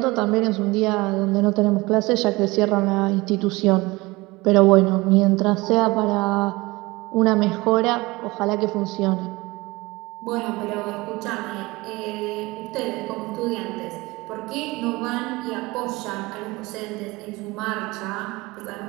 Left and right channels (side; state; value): left; quieter; 22.5 dB